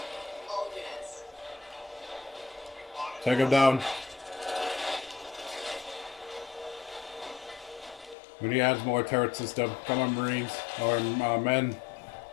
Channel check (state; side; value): drops out; right; at 8.2 s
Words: All units. Take him down. We need to add more turret system. Come on, Marines. Or men.